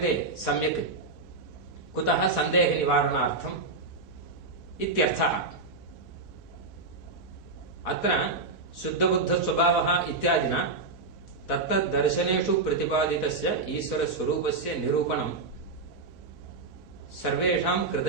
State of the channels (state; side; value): quieter; left; 3.6 dB